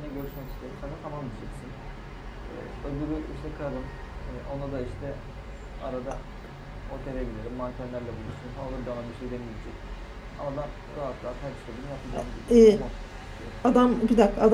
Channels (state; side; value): identical; both; correlation 1.00